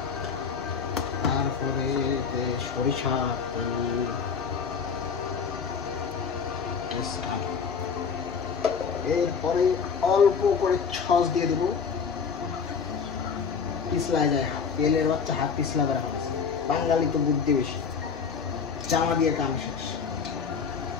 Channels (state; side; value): quieter; right; 6.0 dB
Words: তারপরে সরিষা তেল, এরপরে অল্প করে সস দিয়ে দেবো, পিছলা যায় হাত, তেলের বাচ্চা হাত পিছলা করা হয়েছে। বাঙালি তো বুদ্ধি বেশি, জামা দিয়ে কাম শেষ